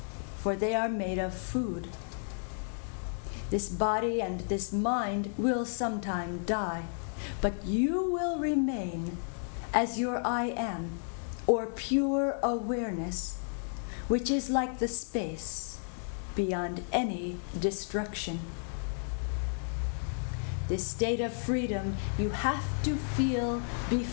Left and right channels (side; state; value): right; silent; 56 dB below the other